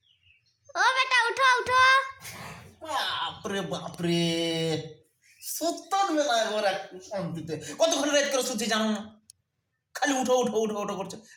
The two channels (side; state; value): both; identical; correlation 1.00